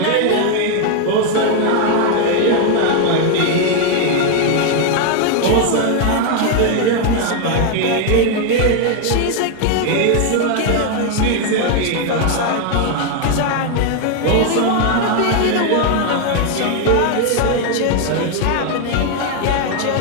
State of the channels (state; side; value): different; both; correlation 0.00